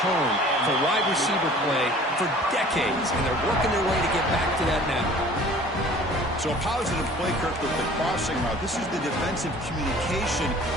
tone for wide receiver play for decades, and they're working their way to get back to that now. So a positive play, Kirk, with the crossing route. This is the defensive communication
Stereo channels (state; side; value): normal; both; correlation 0.48